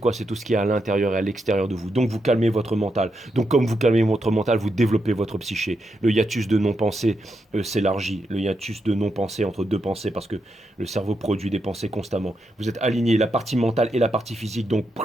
C'est tout ce qui est à l'intérieur et à l'extérieur de vous. Donc vous calmez votre mental. Donc comme vous calmez votre mental, vous développez votre psyché. Le hiatus de non-pensée s'élargit. Le hiatus de non-pensée entre deux pensées, parce que le cerveau produit des pensées constamment. Vous êtes aligné, la partie mentale et la partie physique, donc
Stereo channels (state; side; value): normal; both; correlation 0.83